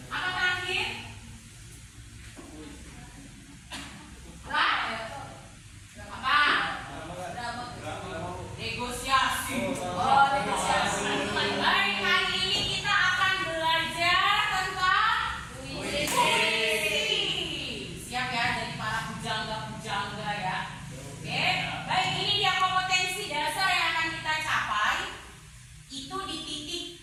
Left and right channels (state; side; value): identical; both; correlation 1.00